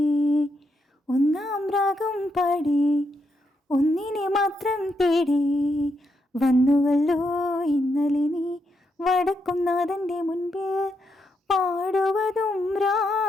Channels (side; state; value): both; normal; correlation 0.80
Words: ഒന്നാം രാഗം പാടി ഒന്നിനെ മാത്രം തേടി വന്നുവല്ലോ ഇന്നലെ നീ വടക്കുന്നാഥൻ്റെ മുൻപിൽ. പാടുവതും